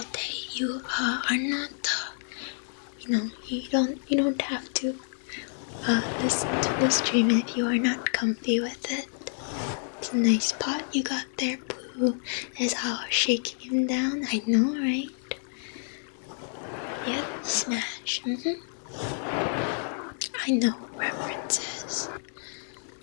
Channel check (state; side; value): silent; right; 59 dB below the other